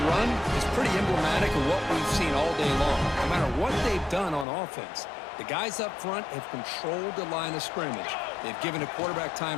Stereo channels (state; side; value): drops out; right; at 4.5 s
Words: run is pretty emblematic of what we've seen all day long. No matter what they've done on offense, the guys up front have controlled the line of scrimmage. They've given a quarterback